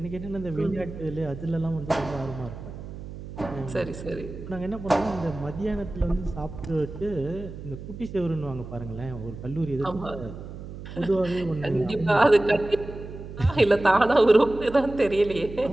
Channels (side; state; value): right; noise; hum, 11 dB below the sound